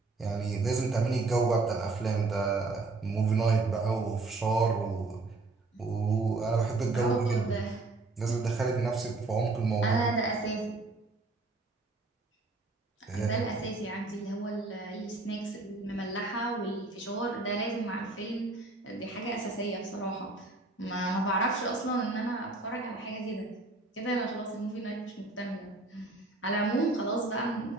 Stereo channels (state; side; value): quieter; left; 3.4 dB